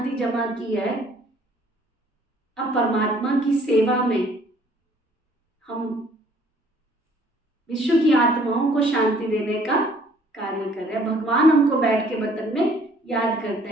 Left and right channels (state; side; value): normal; both; correlation 0.59